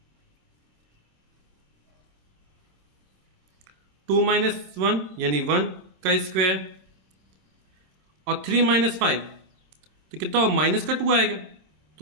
2 - 1 यानी 1 का स्क्वायर, और 3 - 5 तो कितना हो, माइनस का 2 आएगा।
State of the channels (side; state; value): left; late; 27 ms